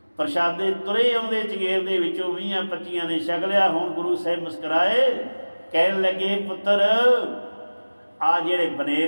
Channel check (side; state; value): both; inverted; correlation -1.00